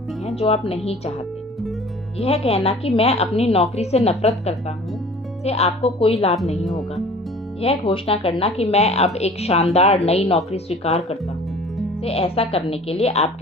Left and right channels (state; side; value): normal; both; correlation 0.46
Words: हैं जो आप नहीं चाहते। यह कहना कि मैं अपनी नौकरी से नफरत करता हूँ से आपको कोई लाभ नहीं होगा। यह घोषणा करना कि मैं अब एक शानदार नई नौकरी स्वीकार करता हूँ से ऐसा करने के लिए